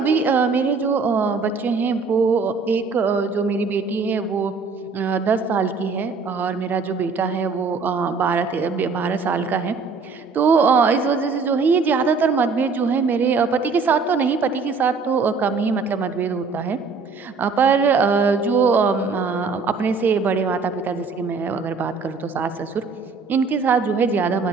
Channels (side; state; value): left; quieter; 4.7 dB